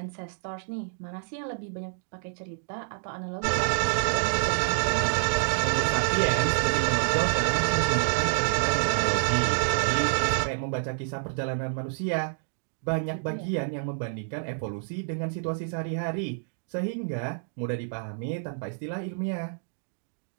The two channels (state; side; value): silent; left; digital silence